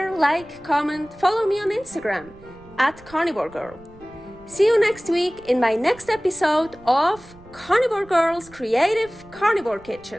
like, comment, follow me on Instagram @karnivorgirl. See you next week in my next episode of Carnivore Girl's Creative Carnivore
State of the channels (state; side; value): noise; right; rumble, 23 dB below the sound